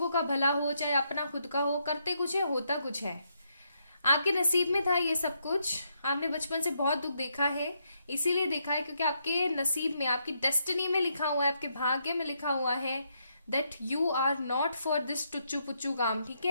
का भला हो चाहे अपना खुद का हो, करते कुछ है होता कुछ है। आपके नसीब में था ये सब कुछ। आपने बचपन से बहुत दुख देखा है, इसीलिए देखा है क्योंकि आपके नसीब में, आपकी डेस्टिनी में लिखा हुआ है, आपके भाग्य में लिखा हुआ है that you are not for this टुच्चू पुच्चू काम। ठीक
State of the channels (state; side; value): inverted; both; correlation -0.77